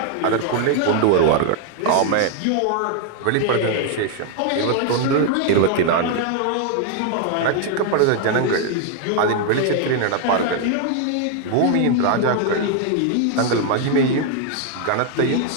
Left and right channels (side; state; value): both; different; correlation 0.00